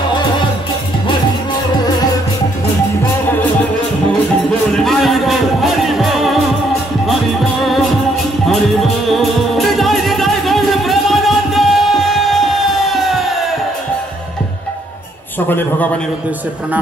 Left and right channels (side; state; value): both; normal; correlation 0.70